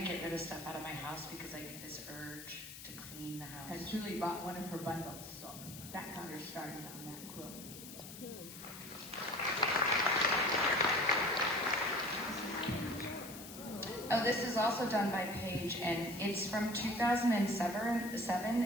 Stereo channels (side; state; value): left; noise; hiss, 13 dB below the sound